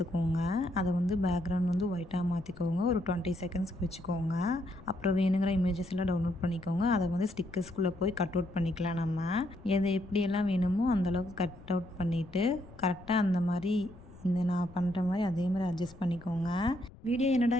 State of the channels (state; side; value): noise; left; rumble, 20 dB below the sound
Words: அதை வந்து பேக்ரவுண்ட் வந்து ஒயிட்டாக மாற்றிக்கோங்க, ஒரு 20 செகண்ட்ஸ்க்கு வச்சுக்கோங்க. அப்புறம் வேணுங்கிற இமேஜஸ் எல்லாம் டவுன்லோட் பண்ணிக்கோங்க. அதை வந்து ஸ்டிக்கர்ஸ்குள்ளே போய் கட் அவுட் பண்ணிக்கலாம். நம்ம எதை எப்படியெல்லாம் வேணுமோ அந்தளவுக்கு கட் அவுட் பண்ணிவிட்டு கரெக்டாக அந்த மாதிரி இந்த நான் பண்ணுற மாதிரி அதே மாதிரி அட்ஜஸ்ட் பண்ணிக்கோங்க. வீடியோ என்னடா